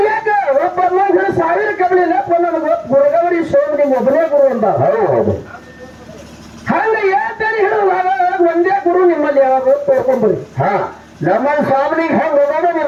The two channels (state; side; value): identical; both; correlation 1.00